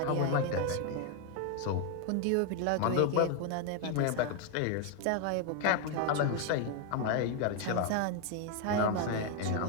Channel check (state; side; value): different; both; correlation 0.01